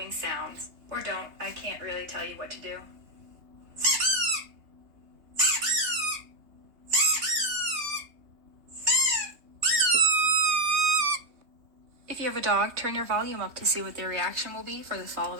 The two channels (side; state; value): left; late; 3.2 ms